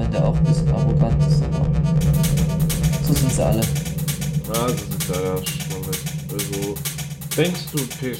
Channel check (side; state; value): both; identical; correlation 1.00